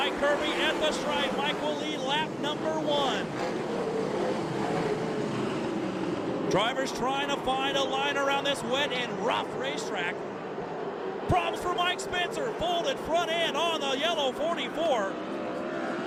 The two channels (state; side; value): identical; both; correlation 1.00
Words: Kirby at the stripe. Mike will lead lap number 1. Drivers trying to find a line around this wet and rough racetrack. Problems for Mike Spencer, folded front end on the yellow 44.